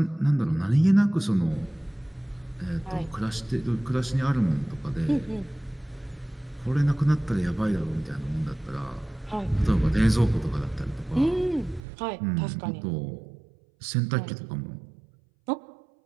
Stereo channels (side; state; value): left; drops out; at 11.8 s